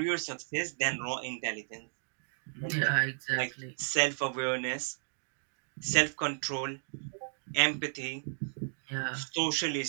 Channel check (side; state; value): left; silent; digital silence